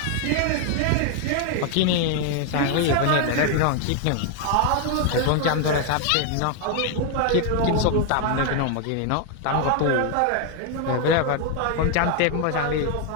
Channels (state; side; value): different; both; correlation 0.01